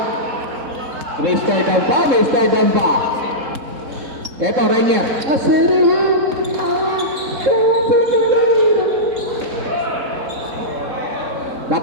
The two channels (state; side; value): late; left; 3.7 ms